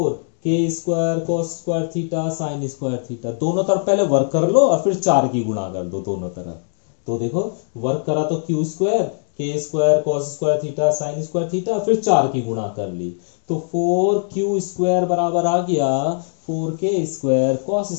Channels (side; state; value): right; silent; digital silence